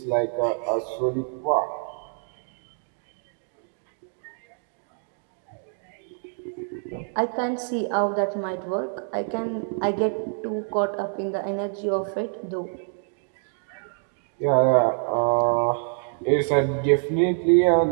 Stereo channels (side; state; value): left; silent; digital silence